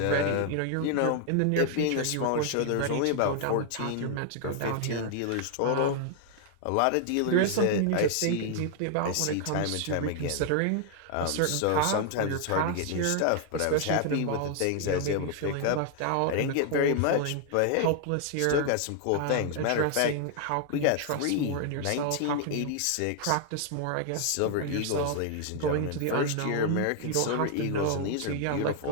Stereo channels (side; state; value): both; different; correlation 0.00